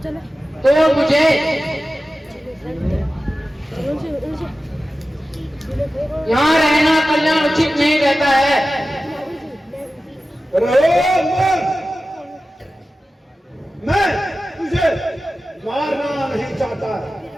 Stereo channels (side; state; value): both; normal; correlation 0.94